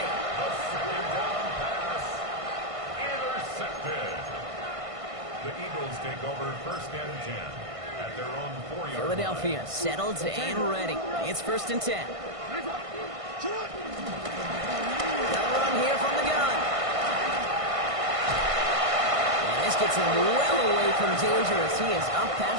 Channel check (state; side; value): late; left; 1.5 ms